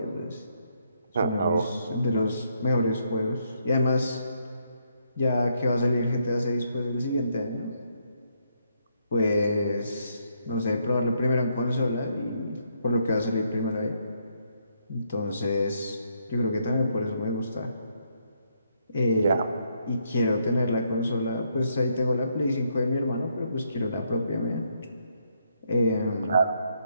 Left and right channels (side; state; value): both; inverted; correlation -0.74